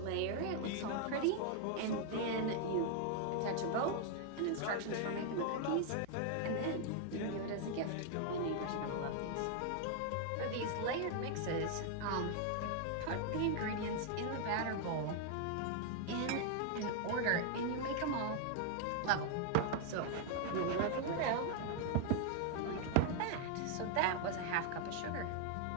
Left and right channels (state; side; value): different; both; correlation 0.00